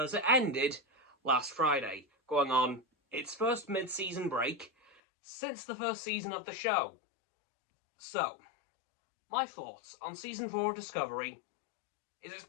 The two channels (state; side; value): drops out; right; at 5.0 s